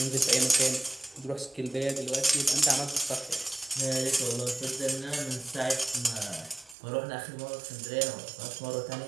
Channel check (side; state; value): left; drops out; at 6.8 s